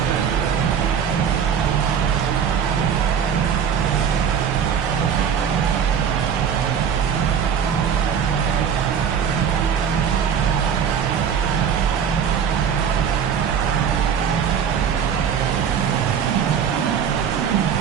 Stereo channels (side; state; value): left; quieter; 7.6 dB